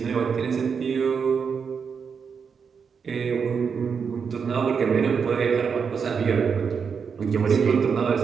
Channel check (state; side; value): quieter; left; 6.2 dB